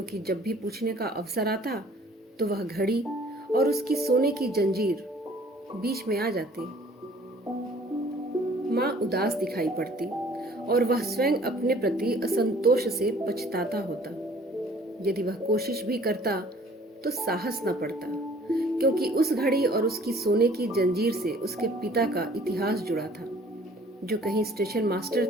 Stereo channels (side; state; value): both; normal; correlation 0.54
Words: जब भी पूछने का अवसर आता तो वह घड़ी और उसकी सोने की जंजीर बीच में आ जाती। माँ उदास दिखाई पड़ती और वह स्वयं अपने प्रति असंतोष से पछताता होता। यदि वह कोशिश भी करता तो साहस न पड़ता, क्योंकि उस घड़ी और उसकी सोने की जंजीर से उसके पिता का इतिहास जुड़ा था, जो कहीं स्टेशन मास्टर